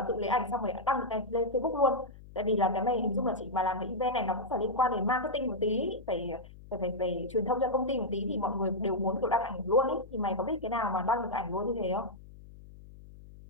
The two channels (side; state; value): left; noise; hum, 19 dB below the sound